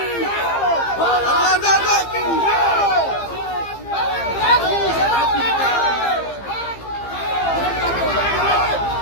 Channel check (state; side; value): late; right; 15 ms